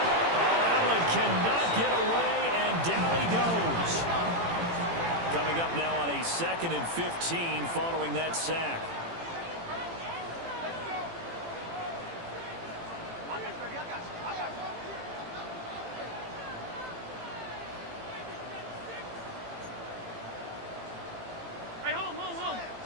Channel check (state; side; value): late; left; 18 ms